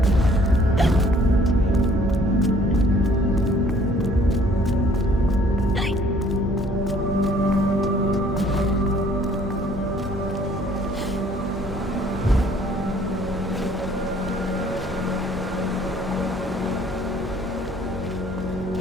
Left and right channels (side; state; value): both; normal; correlation 0.58